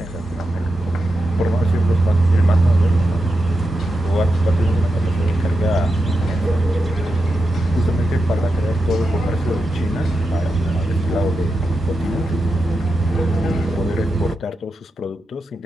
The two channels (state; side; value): normal; both; correlation 0.88